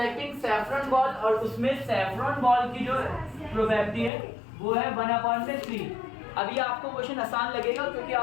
saffron ball, और उसमें सैफरॉन बॉल की जो प्रोबेबिलिटी है वो है 1/3। अभी आपको क्वेश्चन आसान लगेगा क्योंकि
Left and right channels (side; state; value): right; drops out; at 4.1 s